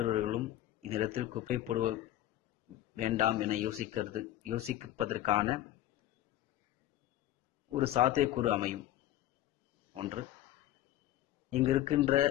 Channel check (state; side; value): quieter; right; 13.7 dB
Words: இந்த இடத்தில் குப்பை போடுவ வேண்டாம் என யோசிப்பதற்கான ஒரு சாத்தியக்கூறு அமையும். ஒன்று, இங்கு இருக்கின்ற